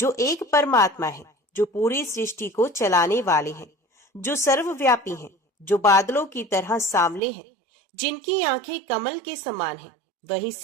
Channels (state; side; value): drops out; left; at 7.2 s